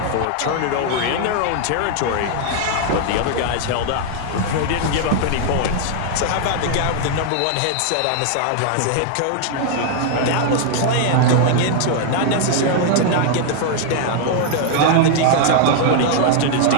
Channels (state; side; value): different; both; correlation 0.00